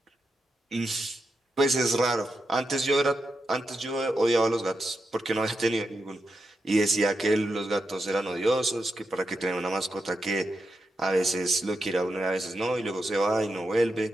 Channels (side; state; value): both; normal; correlation 0.87